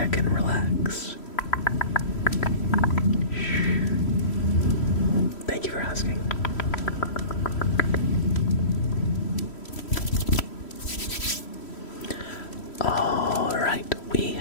can relax. Thank you for asking. Alright, we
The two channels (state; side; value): late; right; 3.1 ms